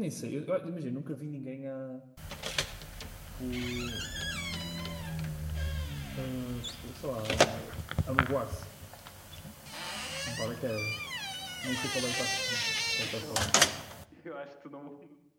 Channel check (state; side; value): identical; both; correlation 1.00